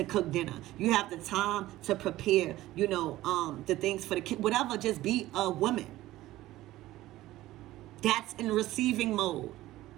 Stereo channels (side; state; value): left; quieter; 16.1 dB